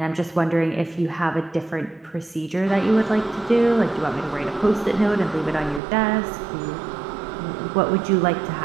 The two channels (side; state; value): left; drops out; at 5.8 s